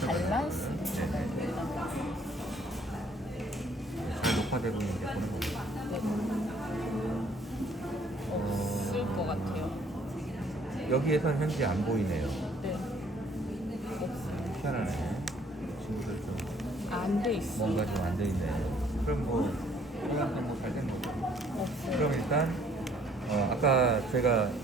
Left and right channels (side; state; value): both; normal; correlation 0.61